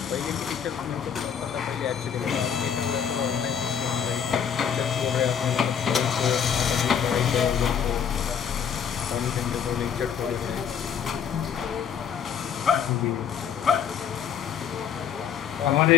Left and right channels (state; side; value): quieter; right; 8.0 dB